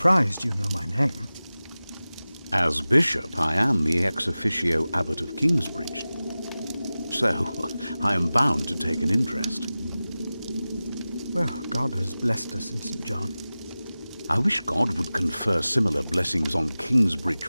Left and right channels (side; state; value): both; inverted; correlation -0.97